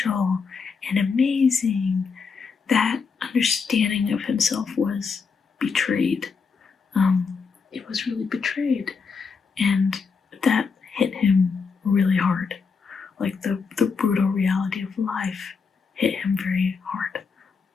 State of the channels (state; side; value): quieter; right; 5.3 dB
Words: and amazing, that understanding of himself was betrayed. It was really betrayed, and that hit him really hard. Like the brutal reality of life hit him very hard.